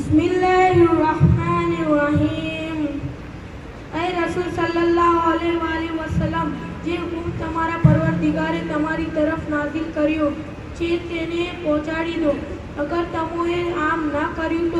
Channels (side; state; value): both; identical; correlation 1.00